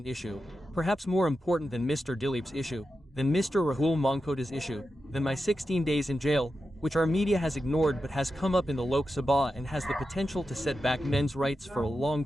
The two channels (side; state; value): both; normal; correlation 0.90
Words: issue, perhaps more important than Mr. Dileep's issue, than Mr. Rahul Mankota's issue, than my 16 days in jail, which our media has ignored but has come up in the Lok Sabha and has the potential to set back men's rights for a long